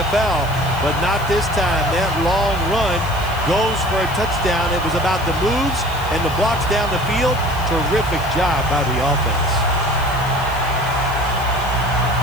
but not this time. That long run goes for a touchdown. It was about the moves and the blocks down the field. Terrific job by the offense.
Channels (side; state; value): left; noise; hiss, 19 dB below the sound